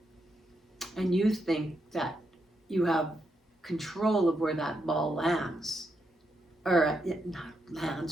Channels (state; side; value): normal; both; correlation 0.82